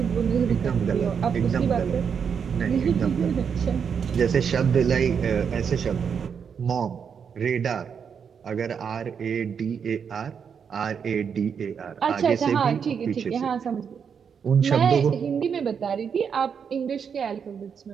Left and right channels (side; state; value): left; quieter; 6.9 dB